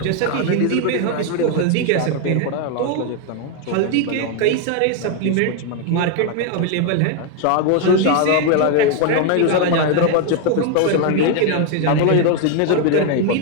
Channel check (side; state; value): both; different; correlation 0.01